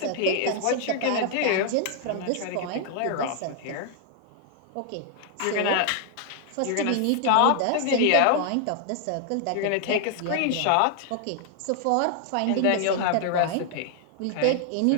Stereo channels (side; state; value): both; different; correlation 0.00